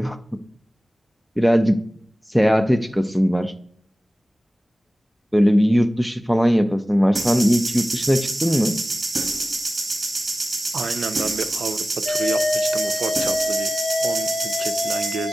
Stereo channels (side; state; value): both; normal; correlation 0.96